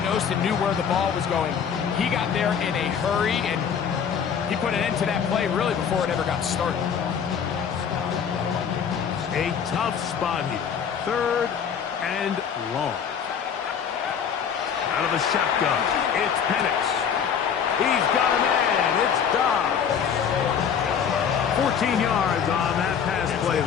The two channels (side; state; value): right; quieter; 7.4 dB